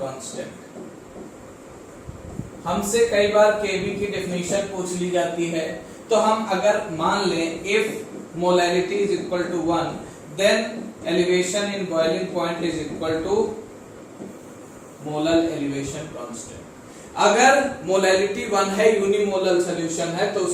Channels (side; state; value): both; identical; correlation 1.00